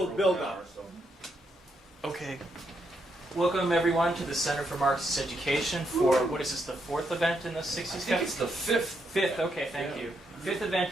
build-up. Okay. Welcome everyone to the Center for Marxist Education for, what is this, the fourth event in the 60s Cafe? I think it's the fifth. Fifth, okay, thank you. Fifth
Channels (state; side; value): normal; both; correlation 0.79